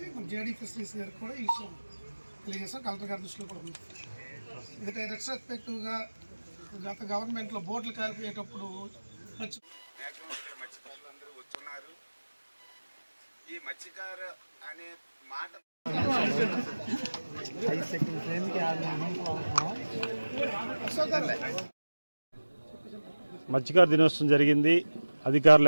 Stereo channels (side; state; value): both; inverted; correlation -1.00